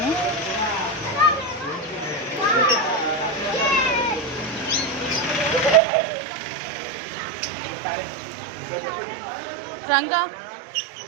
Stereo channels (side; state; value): left; drops out; at 5.8 s